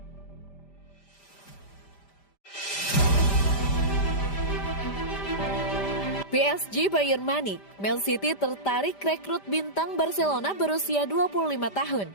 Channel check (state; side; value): late; right; 5.0 ms